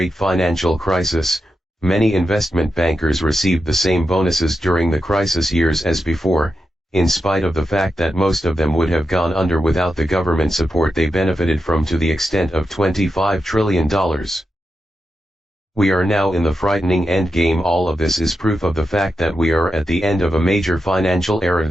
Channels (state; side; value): normal; both; correlation 0.88